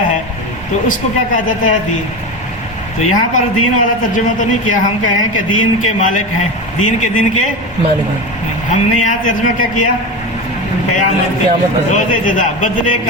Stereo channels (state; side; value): normal; both; correlation 0.22